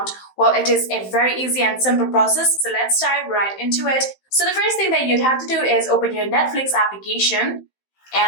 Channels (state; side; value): late; right; 15 ms